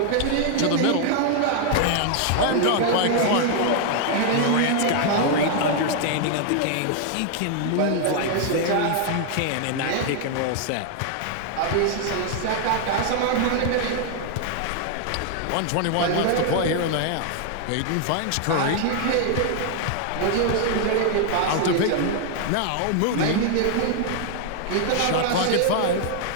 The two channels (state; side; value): different; both; correlation 0.00